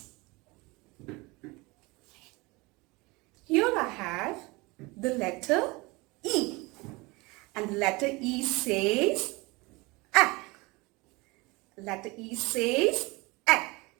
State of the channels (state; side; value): quieter; left; 24.5 dB